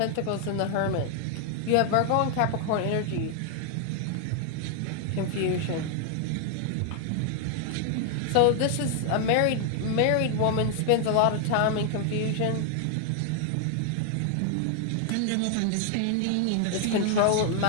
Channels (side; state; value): both; different; correlation 0.00